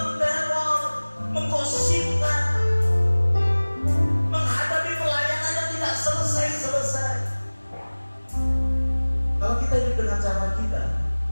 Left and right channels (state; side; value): inverted; both; correlation -1.00